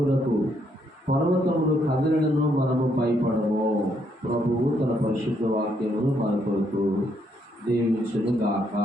పర్వతములు కదిలినను మనము భయపడము. ప్రభువు తన పరిశుద్ధ వాక్యమును మన కొరకు దీవించును గాక.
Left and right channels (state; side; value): normal; both; correlation 0.74